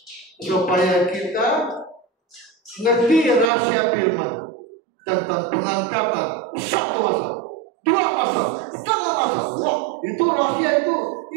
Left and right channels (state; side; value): drops out; left; at 3.5 s